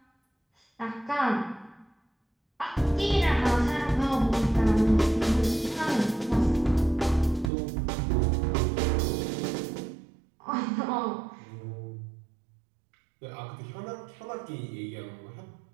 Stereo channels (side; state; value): left; drops out; at 7.5 s